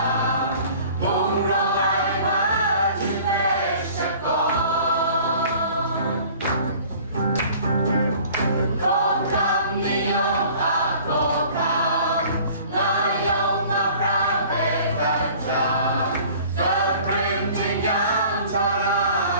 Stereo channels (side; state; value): both; inverted; correlation -0.49